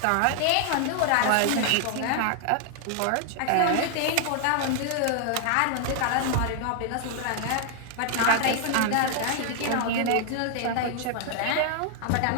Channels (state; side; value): different; both; correlation 0.00